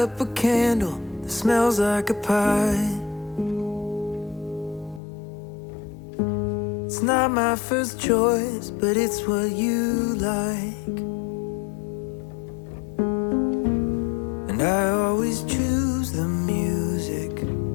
a candle that smells like a pie. It's not my first choice, but it's what you like. And I always choose the music.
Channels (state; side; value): drops out; right; at 5.0 s